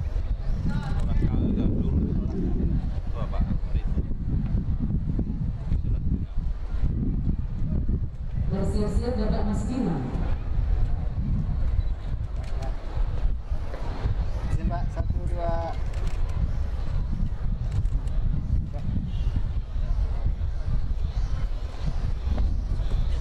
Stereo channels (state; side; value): identical; both; correlation 1.00